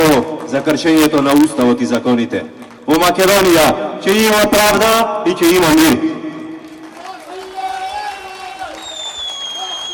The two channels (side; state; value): both; identical; correlation 1.00